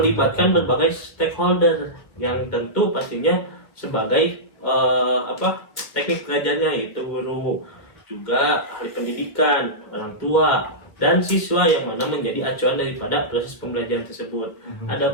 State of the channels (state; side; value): late; right; 1.7 ms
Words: berbagai stakeholder yang tentu pastinya sebagai teknik pengajarnya, yaitu guru, juga ahli pendidikan, orang tua, dan siswa yang mana menjadi acuan daripada proses pembelajaran tersebut.